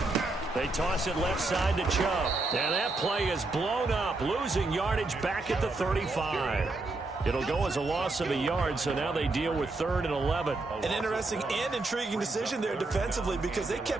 They toss it left side to Chubb. And that play is blown up, losing yardage back at the 35. It'll go as a loss of a yard, so now they deal with 3rd and 11. An interesting and intriguing decision there defensively because they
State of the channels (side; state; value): left; quieter; 3.2 dB